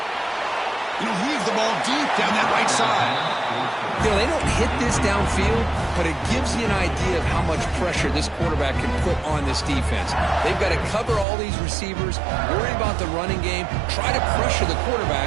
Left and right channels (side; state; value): left; drops out; at 11.2 s